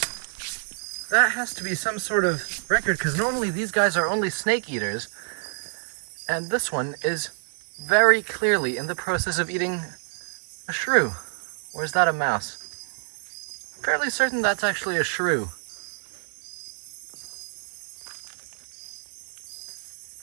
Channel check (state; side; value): silent; left; 60 dB below the other